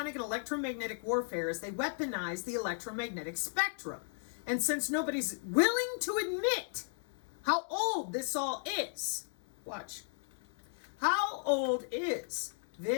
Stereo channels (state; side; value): silent; right; digital silence